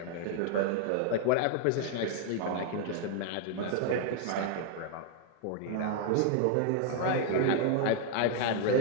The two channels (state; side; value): different; both; correlation 0.00